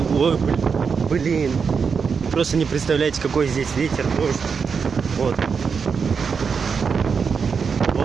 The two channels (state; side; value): quieter; left; 5.8 dB